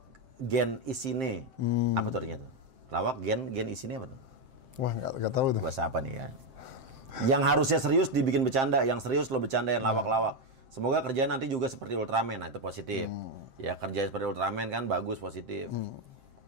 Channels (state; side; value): late; left; 7.6 ms